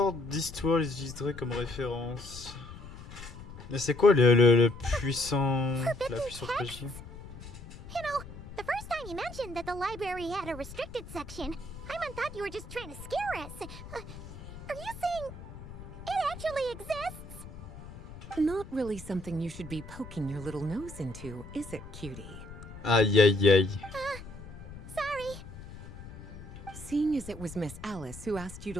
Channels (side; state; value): left; noise; rumble, 14 dB below the sound